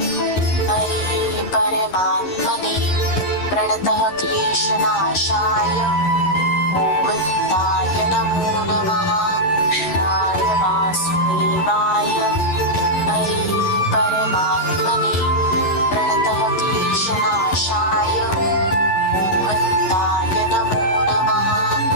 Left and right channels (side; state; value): right; late; 11 ms